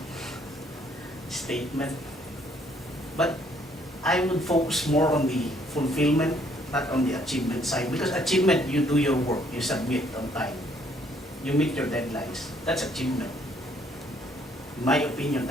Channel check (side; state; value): both; normal; correlation 0.65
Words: statement, but I would focus more on the fulfillment, not on the achievement side, because achievement, you do your work, you submit on time, you meet your deadlines, that's achievement. In my opinion,